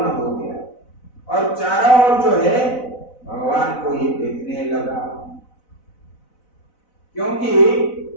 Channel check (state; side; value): late; right; 4.0 ms